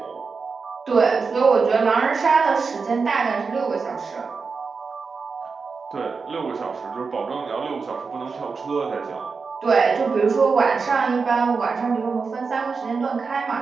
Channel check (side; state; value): left; quieter; 4.9 dB